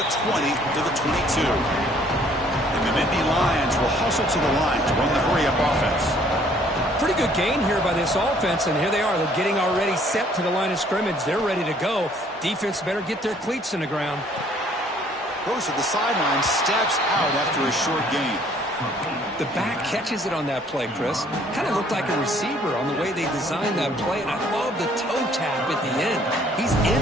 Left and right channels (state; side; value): normal; both; correlation 0.60